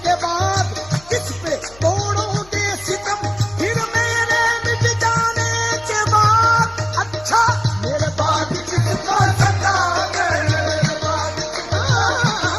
के बाद, किस पे तोड़ोगे सितम फिर मेरे मिट जाने के बाद। अच्छा मेरे बाद किसको सताओगे, मेरे बाद किसको सताओगे।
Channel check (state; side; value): noise; left; hum, 23 dB below the sound